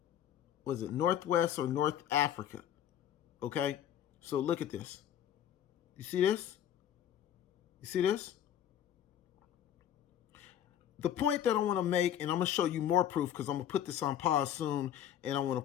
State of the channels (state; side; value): quieter; right; 10.3 dB